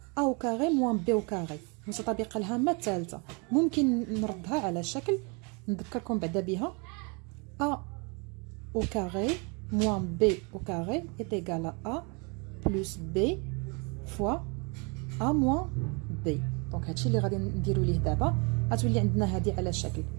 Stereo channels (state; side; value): quieter; left; 32.1 dB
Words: au carré moins b au carré متطابقه الهامه الثالثه ممكن نردها على شكل نذكركم بعدا بها a au carré moins b au carré est égal à a plus b fois a moins b دونك هادشي اللي غادي نديرو ليه دابا غتولي عندنا هذه على شكل